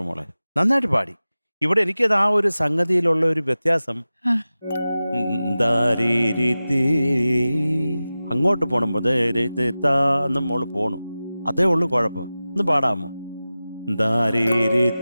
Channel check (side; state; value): both; inverted; correlation -0.96